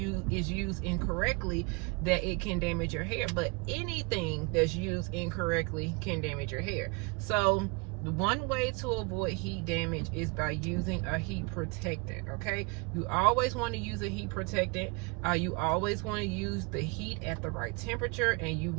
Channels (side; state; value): left; quieter; 28.7 dB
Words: is used incorrectly that it can damage your hair. But anything that's used incorrectly can damage your hair. So the one way to avoid heat damage is by using a heat protectant. Okay, you always want to use a heat protectant. You always want to use the heat at the right temperature, and you